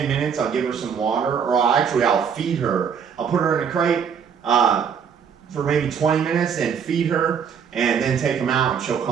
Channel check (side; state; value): left; quieter; 7.1 dB